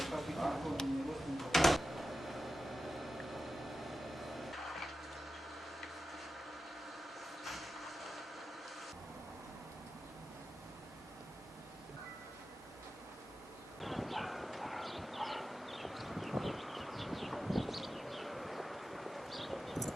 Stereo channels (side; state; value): both; normal; correlation 0.92